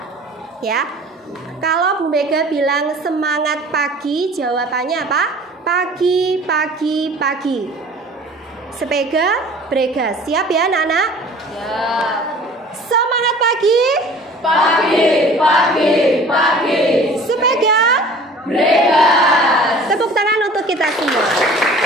ya. Kalau Bu Mega bilang semangat pagi, jawabannya apa? Pagi, pagi, pagi. Sepega, brega. Siap ya anak-anak? Siap. Semangat pagi. Pagi, pagi, pagi. Sepega, Brega. tepuk tangan untuk kita semua.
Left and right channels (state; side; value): normal; both; correlation 0.46